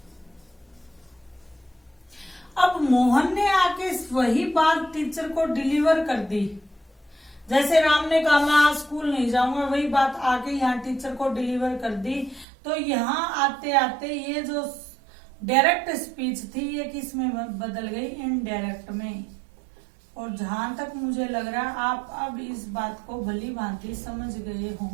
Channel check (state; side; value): drops out; left; at 12.5 s